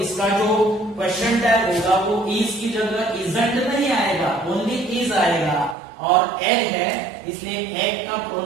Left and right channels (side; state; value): left; drops out; at 5.8 s